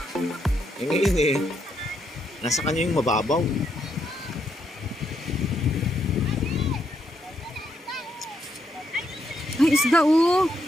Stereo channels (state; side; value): normal; both; correlation 0.77